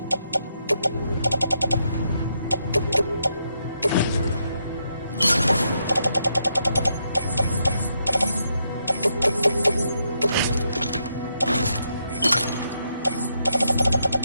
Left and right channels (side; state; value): both; inverted; correlation -0.80